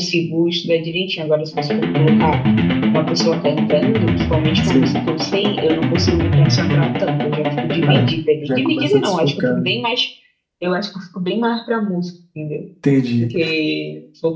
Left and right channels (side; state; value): both; identical; correlation 1.00